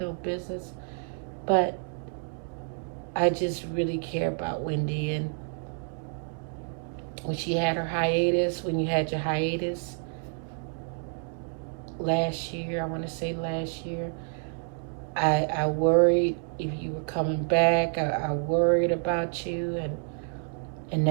no business. But I just really care about Wendy. And when she had her hiatus, when you had your hiatus last year, I want to say last year, I worried if you were coming back. I worried about you, and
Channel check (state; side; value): silent; left; 57 dB below the other